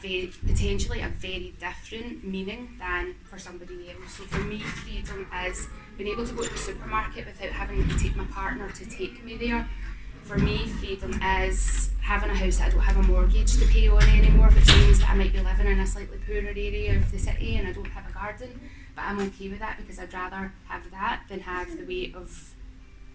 a very different meaning than for somebody else. So for me, freedom is being able to go to the supermarket without having to take my partner to take me there. For me, freedom is having a house that I don't have a mortgage to pay on anymore, which means that I might be living in a slightly poorer area of the city and I don't have a garden, but I'm okay with that because I'd rather have that than have the weight of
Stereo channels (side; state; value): both; identical; correlation 1.00